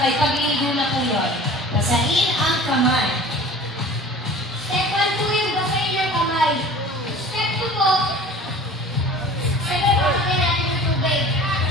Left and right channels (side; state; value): both; normal; correlation 0.43